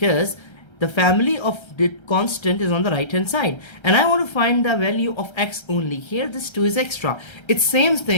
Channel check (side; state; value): right; late; 1.3 ms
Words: the family of the constant is on the right hand side, and I want to find the value of x only. Here this 2 is extra. It's same